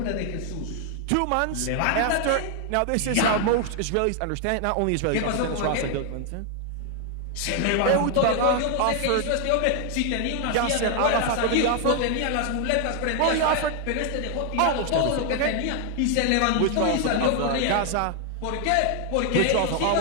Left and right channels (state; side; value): different; both; correlation 0.00